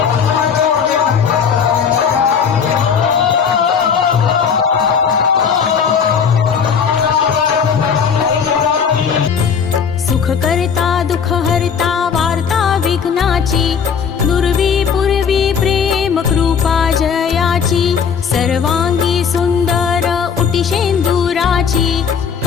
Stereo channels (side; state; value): right; quieter; 6.7 dB